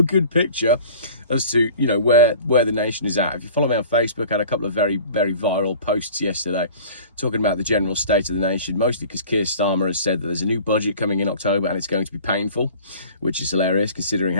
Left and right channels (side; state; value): both; inverted; correlation -0.44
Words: good picture as to, you know, where the nation is at. If you follow me on Facebook, I had a couple of very viral posts yesterday talking about the general state of the nation, mostly because Keir Starmer has said that there's a new budget coming in October and it's going to be painful, which is hilarious considering